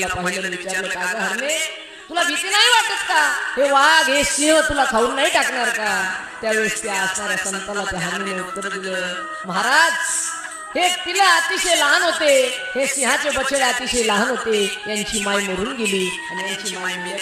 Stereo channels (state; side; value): identical; both; correlation 1.00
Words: पाहिलं, विचारलं, का ग हरणे, तुला भीती नाही वाटत का? हे वाघ हे सिंह तुला खाऊन नाही टाकणार का? त्यावेळेस त्या असणाऱ्या संताला त्या हरणीने उत्तर दिलं, महाराज, हे तिला अतिशय लहान होते, हे सिंहाचे बछडे अतिशय लहान होते, यांची माय मरून गेली आणि यांची माय